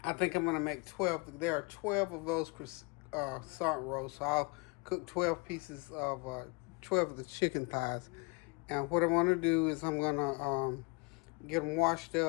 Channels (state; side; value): quieter; right; 30.3 dB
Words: I think I'm going to make 12. There are 12 of those croissant rolls, so I'll cook 12 pieces of 12 of the chicken thighs. And what I'm going to do is I'm going to get them washed